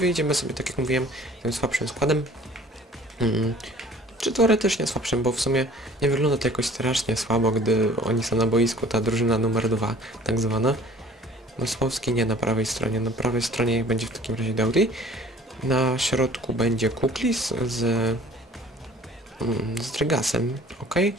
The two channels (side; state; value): both; normal; correlation 0.50